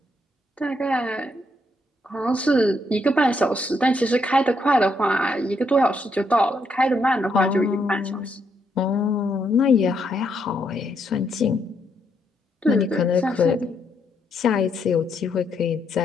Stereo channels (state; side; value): normal; both; correlation 0.76